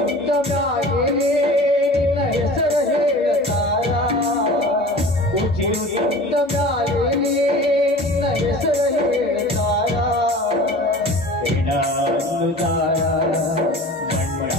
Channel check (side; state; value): both; normal; correlation 0.40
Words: ಮ್ಯಾಗೆ ನಿನ್ನ ಹೆಸರು ಹೇಳತಾರ, ಉಸಿರು ಇದ್ದ ಮ್ಯಾಗೆ ನಿನ್ನ ಹೆಸರು ಹೇಳತಾರ. ಹೆಣ ಅನ್ನುದಾರ